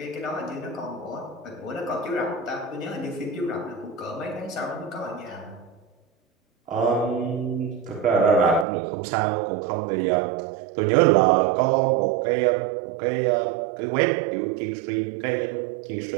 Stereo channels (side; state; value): left; drops out; at 8.7 s